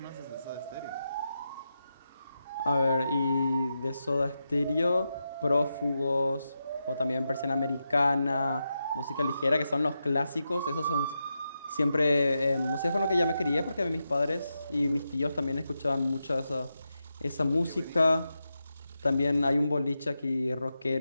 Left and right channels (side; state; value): both; inverted; correlation -0.88